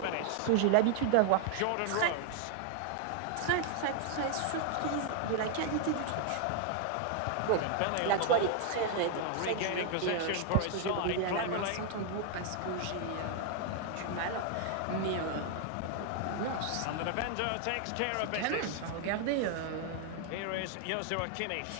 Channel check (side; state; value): both; different; correlation 0.00